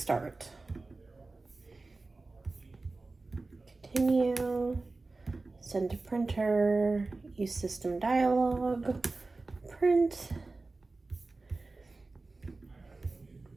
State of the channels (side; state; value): left; quieter; 3.5 dB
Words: Continue, send to printer, use system dialog, print.